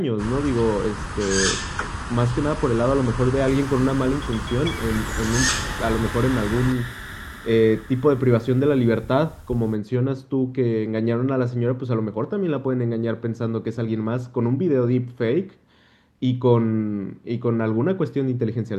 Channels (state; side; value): identical; both; correlation 1.00